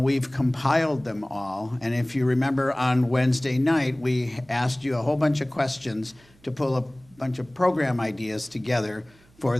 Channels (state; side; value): noise; right; hum, 29 dB below the sound